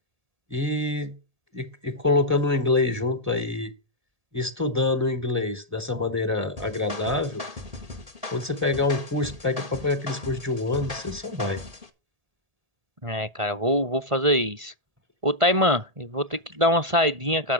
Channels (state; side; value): late; left; 1.8 ms